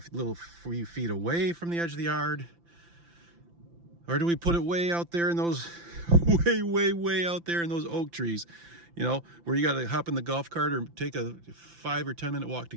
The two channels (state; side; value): late; left; 5.9 ms